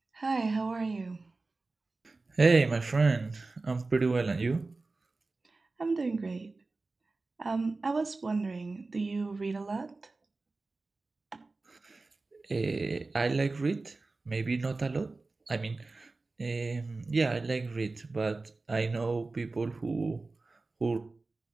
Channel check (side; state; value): left; quieter; 3.5 dB